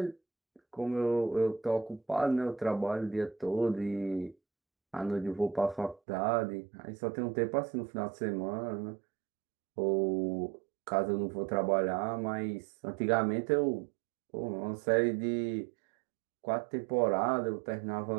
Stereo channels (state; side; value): drops out; left; at 6.0 s